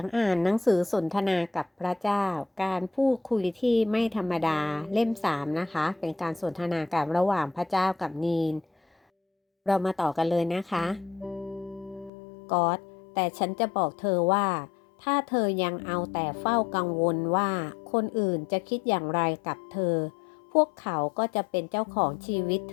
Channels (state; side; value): drops out; right; at 12.1 s